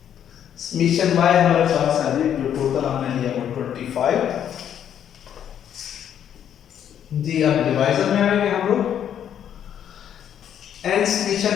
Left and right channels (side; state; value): right; quieter; 9.5 dB